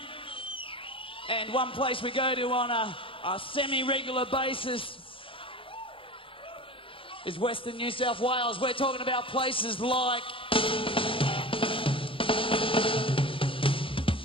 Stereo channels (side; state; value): right; late; 0.26 ms